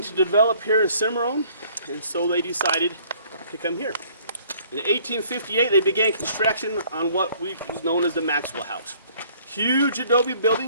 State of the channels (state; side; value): inverted; both; correlation -0.59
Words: to develop here in Cimarron, and so they decided to come here. In 1858, they began construction on what was known as the Maxwell House. Huge adobe